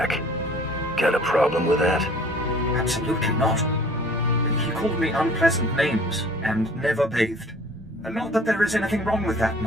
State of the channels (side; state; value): both; normal; correlation 0.50